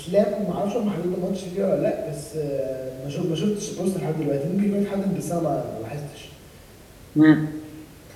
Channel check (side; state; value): both; identical; correlation 1.00